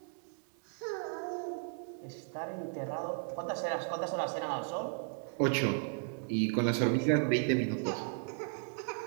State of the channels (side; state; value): left; silent; 54 dB below the other